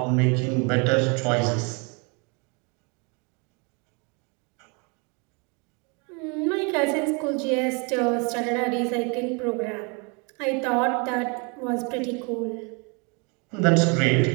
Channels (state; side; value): quieter; left; 32.4 dB